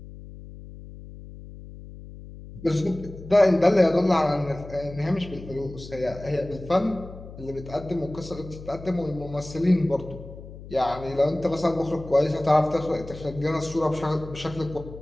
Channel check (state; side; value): noise; left; hum, 15 dB below the sound